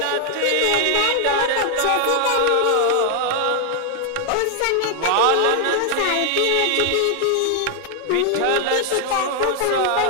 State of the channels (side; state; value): both; different; correlation 0.00